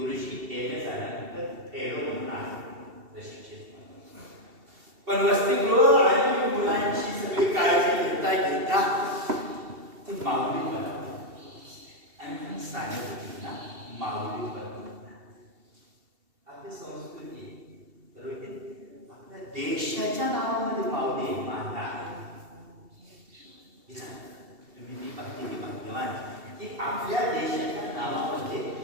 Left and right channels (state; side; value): late; left; 2.7 ms